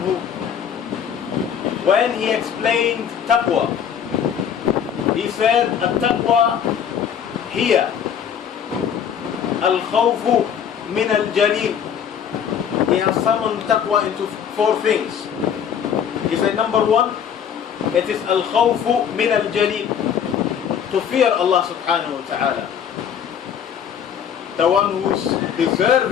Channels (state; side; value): quieter; right; 8.2 dB